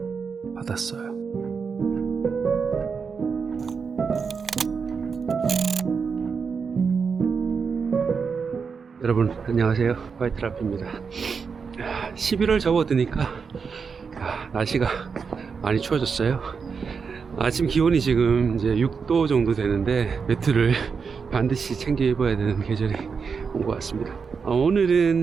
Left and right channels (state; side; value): quieter; left; 5.6 dB